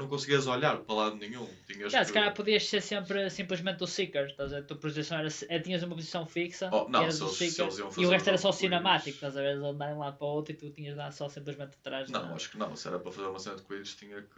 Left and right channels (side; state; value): both; identical; correlation 1.00